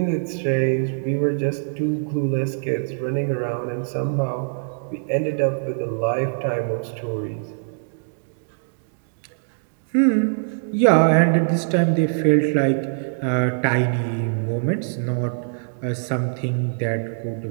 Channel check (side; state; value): left; silent; digital silence